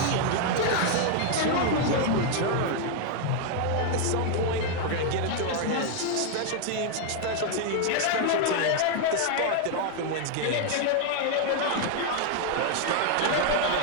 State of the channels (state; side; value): different; both; correlation 0.00